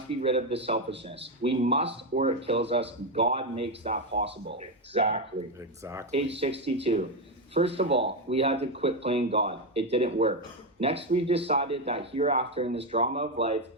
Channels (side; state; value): both; normal; correlation 0.08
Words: be rid of the selfishness. We must, or it kills us. God makes that possible. Exactly. Exactly. Page 62. First of all, we had to quit playing God. It didn't work. Next, we decided that hereafter in this drama of life,